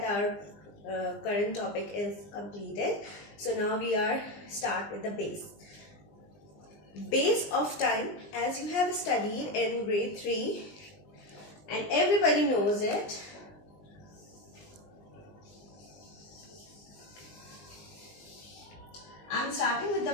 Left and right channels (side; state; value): right; late; 20 ms